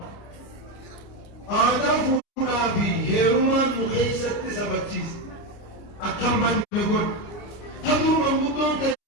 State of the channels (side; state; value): right; late; 29 ms